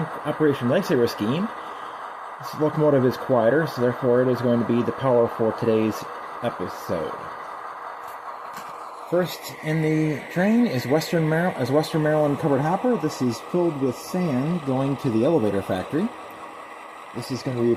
Operation Lifesaver scheme. This locomotive is quieter, so therefore it is going to be the power for today's episode. First in the train is Western Maryland covered hopper. This is filled with sand going to the elevator factory. This is going to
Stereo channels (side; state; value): both; identical; correlation 1.00